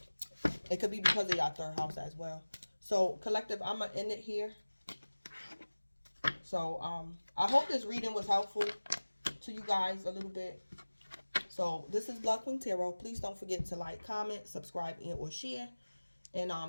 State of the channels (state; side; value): inverted; both; correlation -1.00